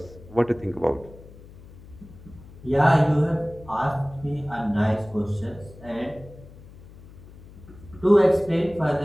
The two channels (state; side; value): noise; left; hum, 19 dB below the sound